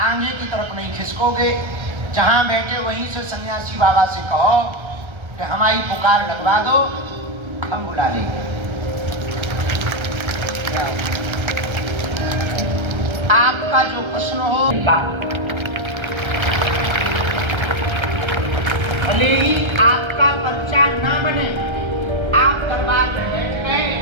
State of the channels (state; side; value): late; left; 1.3 ms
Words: की तरफ नहीं खिसकोगे। जहां बैठे वहीं से सन्यासी बाबा से कहो कि हमारी पुकार लगवा दो, हम बुला लेंगे। आपका जो प्रश्न हो, भले ही आपका पर्चा ना बने, आप दरबार में बैठ गए